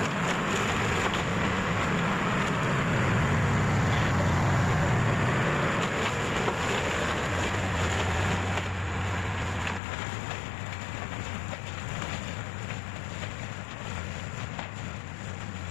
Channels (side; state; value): right; drops out; at 9.8 s